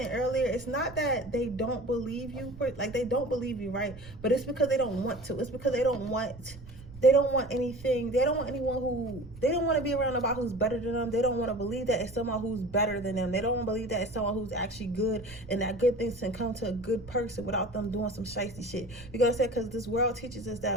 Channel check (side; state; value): right; noise; rumble, 17 dB below the sound